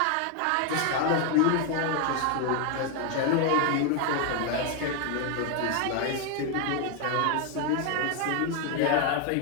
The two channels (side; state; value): both; different; correlation 0.01